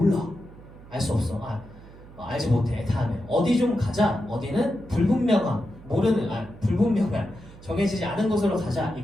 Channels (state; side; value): noise; right; hum, 19 dB below the sound